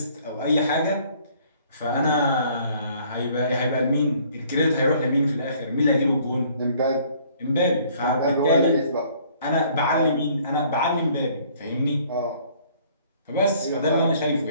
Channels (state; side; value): inverted; both; correlation -0.59